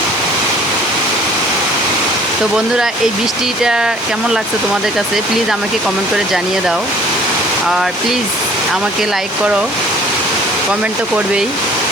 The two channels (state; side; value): normal; both; correlation 0.53